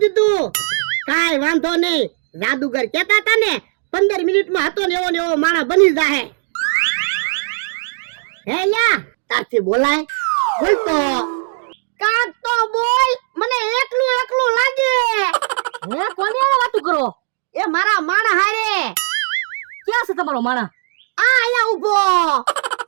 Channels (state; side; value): silent; left; digital silence